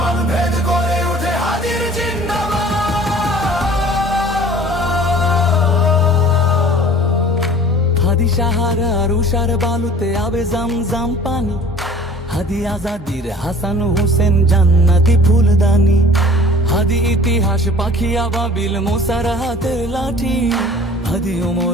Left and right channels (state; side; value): normal; both; correlation 0.47